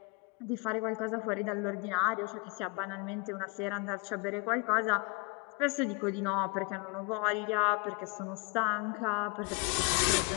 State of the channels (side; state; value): right; quieter; 29.3 dB